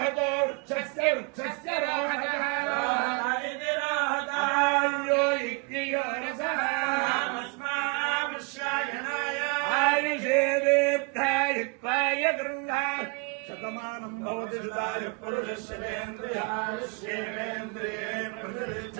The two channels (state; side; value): quieter; left; 32.0 dB